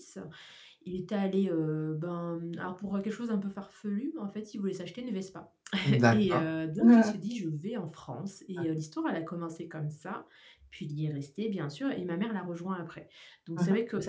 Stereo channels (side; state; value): both; identical; correlation 1.00